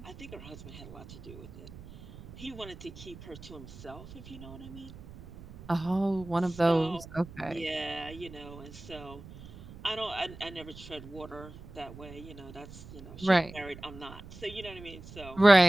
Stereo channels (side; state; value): right; noise; rumble, 16 dB below the sound